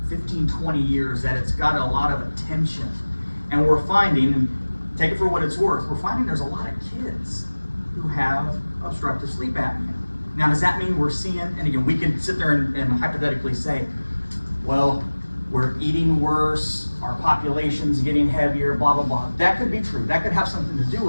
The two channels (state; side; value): inverted; both; correlation -1.00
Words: 15, 20 years that it's got a lot of attention. And we're finding, and take it for what it's worth, we're finding there's a lot of kids who have obstructive sleep apnea. Now, does that mean we're seeing, and again, we can sit there and hypothetically say, well, we're eating worse, our population's getting heavier, blah, blah, blah. That could be true. That could have something to do